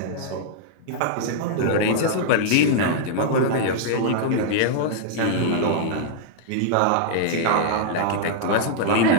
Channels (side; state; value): both; different; correlation -0.01